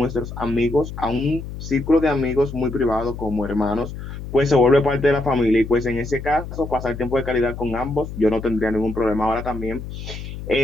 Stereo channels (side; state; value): left; noise; hum, 9 dB below the sound